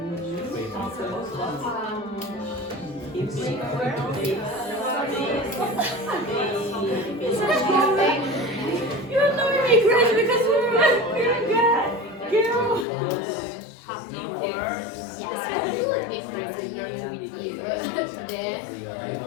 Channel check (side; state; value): right; drops out; at 12.9 s